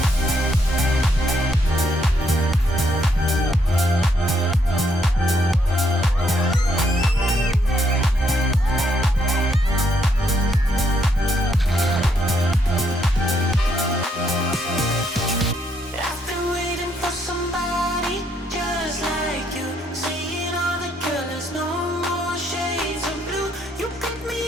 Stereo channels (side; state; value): both; normal; correlation 0.73